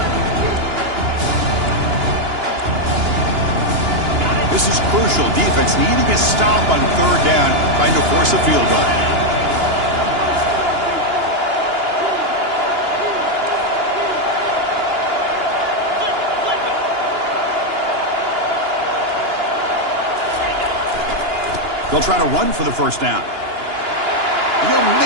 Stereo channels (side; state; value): left; late; 2.9 ms